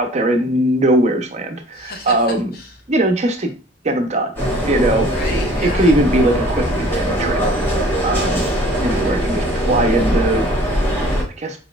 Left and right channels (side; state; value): both; normal; correlation 0.50